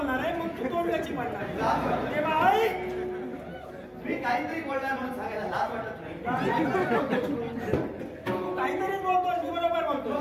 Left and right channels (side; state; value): both; identical; correlation 1.00